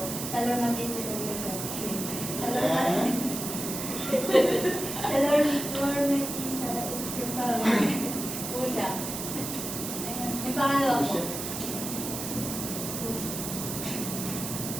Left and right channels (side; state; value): right; noise; hiss, 5 dB below the sound